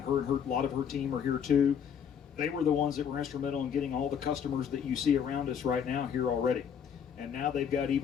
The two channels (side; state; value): right; quieter; 7.8 dB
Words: a lot of her team are here too. They were the ones that were instrumental in getting all the customers that you see around us right now here already. And now they've got